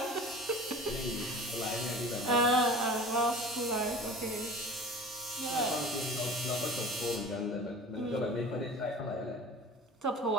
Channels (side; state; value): both; normal; correlation 0.40